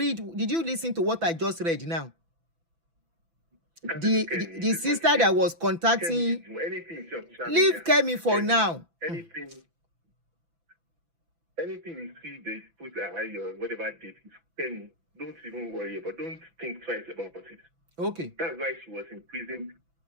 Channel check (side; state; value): left; late; 6.0 ms